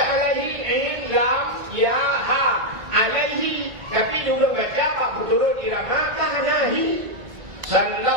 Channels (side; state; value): left; late; 2.0 ms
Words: lam ya ha. Alaihi. Tapi juga baca Pak Puturu irama kahanahi.